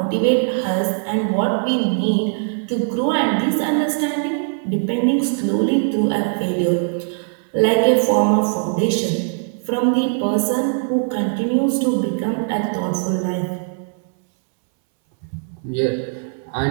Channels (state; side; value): silent; left; 66 dB below the other